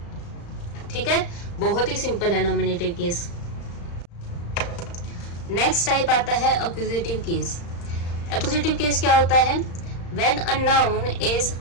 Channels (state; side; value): late; right; 35 ms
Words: ठीक है, बहुत ही सिंपल है नॉमिनेटिव केस। नेक्स्ट टाइप आता है एक्यूजेटिव केस। एक्यूजेटिव केस क्या होता है, when a noun is